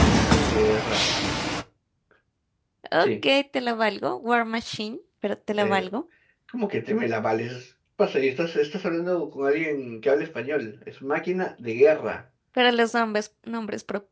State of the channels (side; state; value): both; identical; correlation 1.00